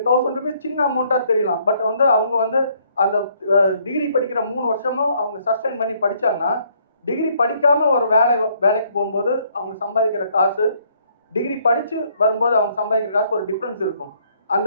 1000 rupees சின்ன அமௌண்ட்டாக தெரியலாம். பட் வந்து அவங்க வந்து அந்த டிகிரி படிக்கிற 3 வருஷமும் அவங்க சஸ்டைன் பண்ணி படித்தாங்கன்னா டிகிரி படிக்காமல் ஒரு வேலைக்கு போகும்போது அவங்க சம்பாதிக்கிற காசு, டிகிரி படித்து வரும்போது அவங்க சம்பாதிக்கிற காசு ஒரு டிஃப்ரென்ஸ் இருக்கும்.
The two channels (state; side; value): inverted; both; correlation -0.66